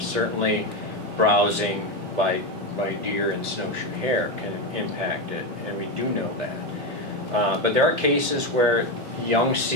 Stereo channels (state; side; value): normal; both; correlation 0.12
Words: Certainly, browsing by deer and snowshoe hare can impact it, and we do know that. But there are cases where young